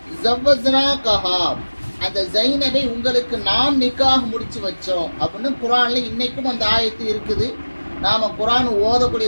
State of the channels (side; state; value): both; inverted; correlation -1.00